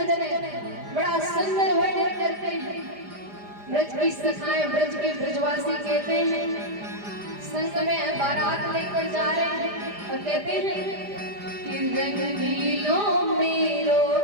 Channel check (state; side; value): late; left; 4.9 ms